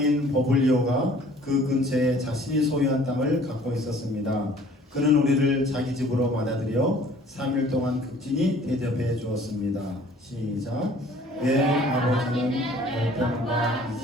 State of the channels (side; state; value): both; normal; correlation 0.53